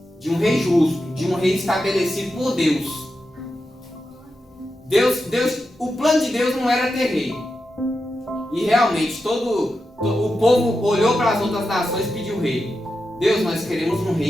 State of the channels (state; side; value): normal; both; correlation 0.89